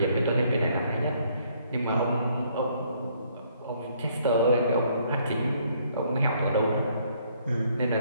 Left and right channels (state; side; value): inverted; both; correlation -0.66